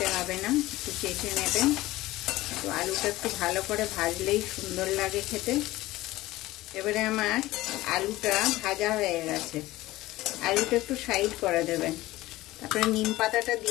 হবে না, একটু চেখে নেবেন। তো আলুটা একটু ভালো করে ভাজলেই সুন্দর লাগে খেতে। এবারে আমার আলুটা ভাজা হয়ে গেছে, আলুটা একটু সাইড করে দেবেন, তারপরে নিম পাতাটা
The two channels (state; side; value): quieter; right; 17.7 dB